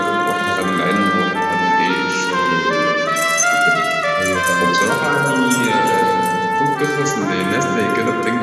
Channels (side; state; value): both; identical; correlation 1.00